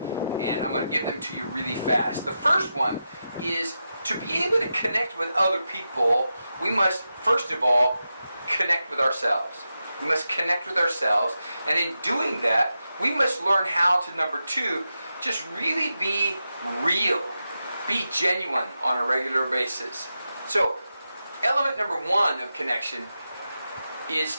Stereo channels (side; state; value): both; inverted; correlation -0.89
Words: and I'm going to give them to you really fast. The first one is to be able to connect with other people, we must, first of all, connect with ourselves. We must connect with ourselves, and in doing that, we must learn how to, number 2, just really be real, be genuine on a regular basis. So, element number 1 of connection is